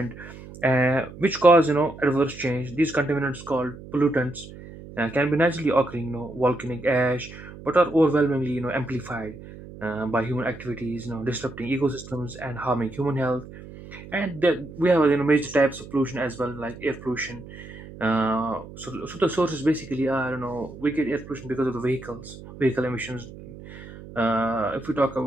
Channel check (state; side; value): noise; right; hum, 15 dB below the sound